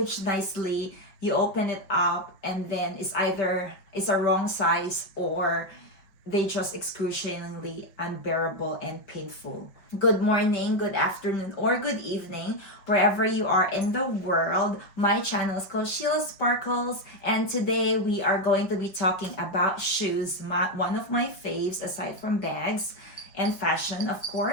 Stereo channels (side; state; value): right; late; 5.5 ms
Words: nicely, you open it up, and then it's a wrong size, or they just excruciatingly unbearable and painful. Good morning, good afternoon, or good evening, wherever you are in the world. My channel is called Sheila Sparkles, and today we are going to be talking about shoes, one of my faves aside from bags and fashion, of course.